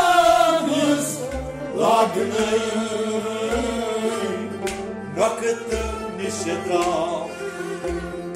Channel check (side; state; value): both; identical; correlation 1.00